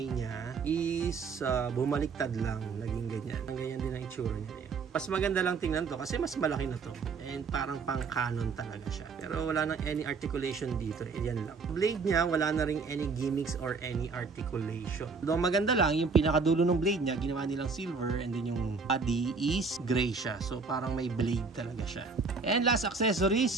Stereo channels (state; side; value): quieter; left; 4.7 dB